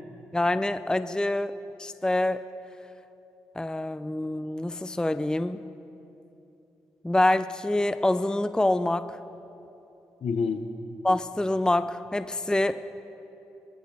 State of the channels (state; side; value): normal; both; correlation 0.96